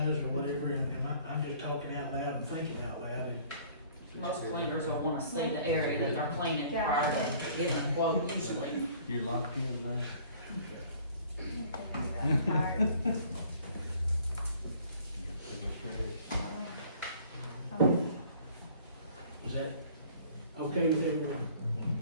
or whatever, and I'm just talking out loud and thinking out loud, and Most cleaners will wanna see the area that they're cleaning Yeah. prior to getting a quote usually. You're locked in now. I'm tired. is that okay with everyone?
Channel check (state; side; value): inverted; both; correlation -0.53